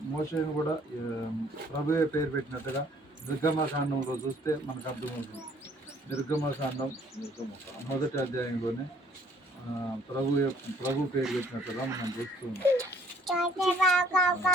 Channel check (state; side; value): normal; both; correlation 0.61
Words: మోషేను కూడా ప్రభువే పేరు పెట్టినట్టుగా నిర్గమకాండంలో చూస్తే మనకు అర్థమవుతుంది. నిర్గమకాండం 1వ అధ్యాయంలోనే ప్రభు పేరు పెట్టినట్టుగా మనం చూస్తున్నాం.